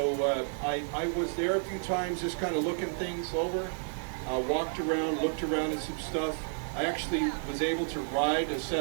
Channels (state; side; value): silent; left; digital silence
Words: I was there a few times just kind of looking things over, walked around, looked around at some stuff. I actually was able to ride a